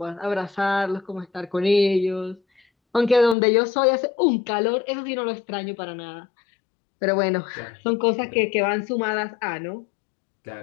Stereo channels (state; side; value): drops out; right; at 3.4 s